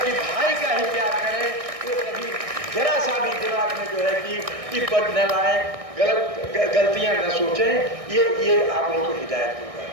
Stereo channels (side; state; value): left; late; 1.6 ms